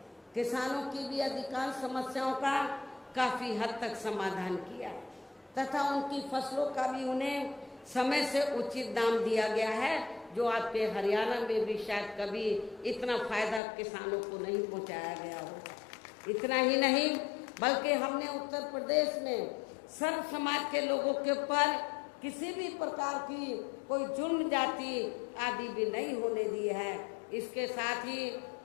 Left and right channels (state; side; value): drops out; right; at 13.6 s